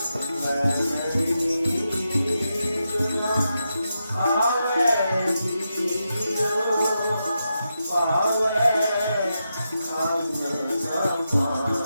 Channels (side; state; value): both; inverted; correlation -0.87